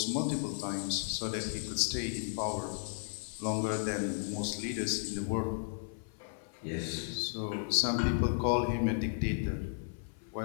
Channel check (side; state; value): right; silent; 55 dB below the other